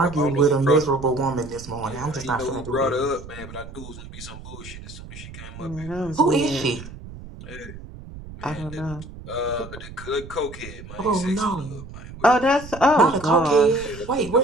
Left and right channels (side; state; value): right; noise; rumble, 14 dB below the sound